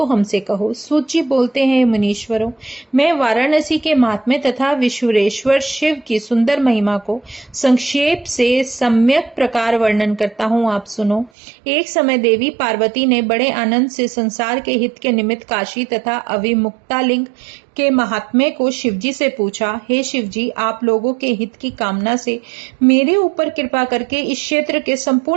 हमसे कहो। सूजी बोलते हैं, मुनीश्वरों, मैं वाराणसी के महात्म्य तथा विश्वेश्वर शिव की सुंदर महिमा को संक्षेप से सम्यक प्रकार वर्णन करता हूँ, आप सुनो। एक समय देवी पार्वती ने बड़े आनंद से संसार के हित के निमित्त काशी तथा अविमुक्तालिंग के महात्म्य को शिवजी से पूछा। हे शिवजी, आप लोगों के हित की कामना से मेरे ऊपर कृपा करके इस क्षेत्र के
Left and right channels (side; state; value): left; drops out; at 11.3 s